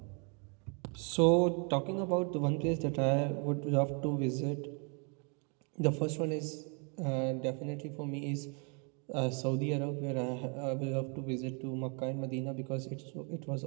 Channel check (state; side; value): quieter; left; 36.7 dB